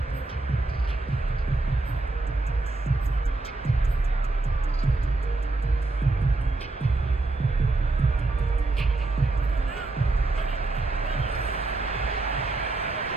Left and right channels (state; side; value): quieter; left; 3.1 dB